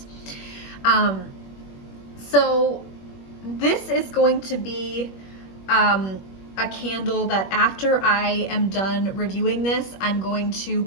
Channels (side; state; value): right; late; 21 ms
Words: So this is going to be a candle that after I am done reviewing this, I'm going to